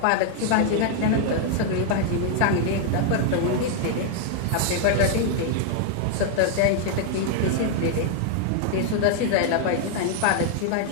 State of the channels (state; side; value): different; both; correlation 0.00